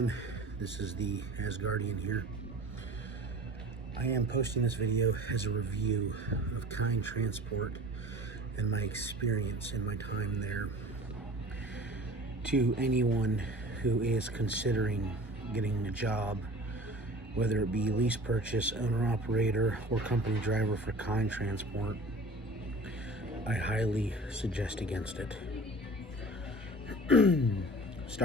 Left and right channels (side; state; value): both; normal; correlation 0.41